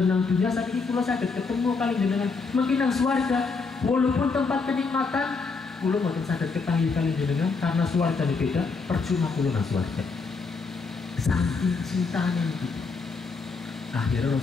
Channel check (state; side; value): quieter; right; 4.5 dB